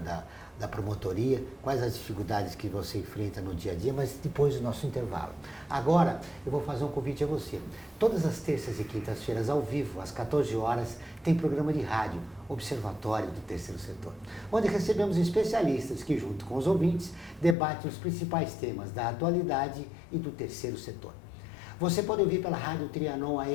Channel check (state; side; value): drops out; right; at 17.6 s